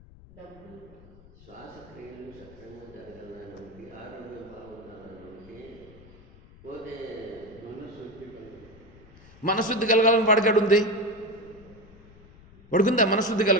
శ్వాసక్రియలు సక్రమంగా జరగాలనుకుంటే, ఆరోగ్యం బాగుండాలనుకుంటే, పోతే మనశుద్ధి కలగాలని వాడికాడు ఉంది. వాడుకుందా మనశుద్ధి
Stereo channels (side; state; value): left; noise; rumble, 23 dB below the sound